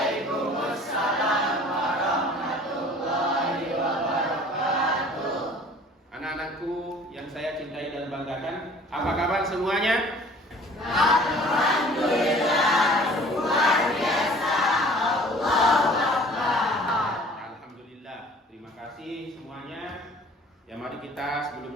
warahmatullahi wabarakatuh. Anak-anakku yang saya cintai dan banggakan, apa kabar semuanya? Alhamdulillah, luar biasa. Allahu Akbar. Alhamdulillah, terima kasih semuanya. Ya, mari kita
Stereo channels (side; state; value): both; normal; correlation 0.49